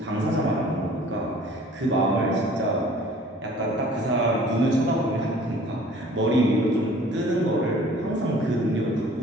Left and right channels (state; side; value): normal; both; correlation 0.51